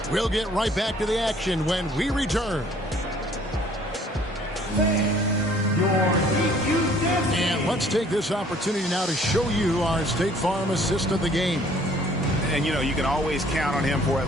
We'll get right back to the action when we return. And let's take this opportunity now to show you our State Farm assist of the game. And, you know, you can always count on him for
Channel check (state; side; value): normal; both; correlation 0.57